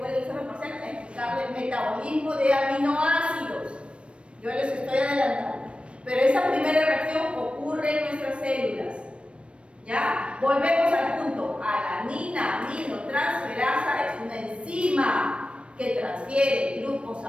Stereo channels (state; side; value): late; left; 0.059 ms